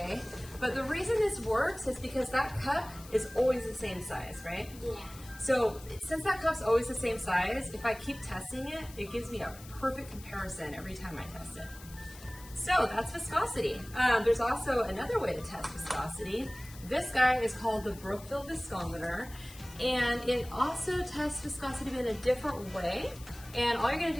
but the reason this works is because that cup is always the same size, right? Yeah. So since that cup's always the same size, if I keep testing it, it gives me a perfect comparison every time I test it. So that's viscosity. There's also another way to test viscosity. This guy is called the Brookfield viscometer, and it also tests viscosity in a different way. And all you're gonna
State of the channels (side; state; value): left; noise; hiss, 18 dB below the sound